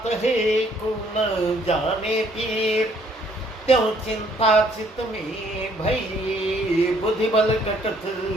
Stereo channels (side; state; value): both; normal; correlation 0.64